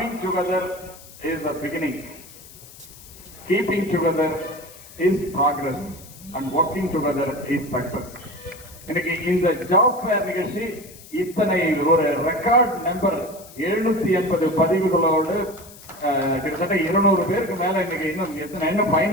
together is a beginning, keeping together is progress, and working together is success. இன்னைக்கு இந்த ஜாப் ஃபேர் நிகழ்ச்சி இத்தனை ஒரு ரெக்கார்ட் நம்பர் 780 பதிவுகளோடு கிட்டத்தட்ட 200 பேருக்கு மேல இன்னைக்கு இன்னும்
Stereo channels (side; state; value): left; noise; hiss, 19 dB below the sound